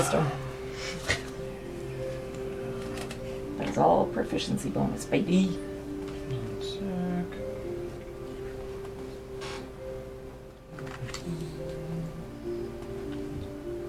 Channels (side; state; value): both; identical; correlation 1.00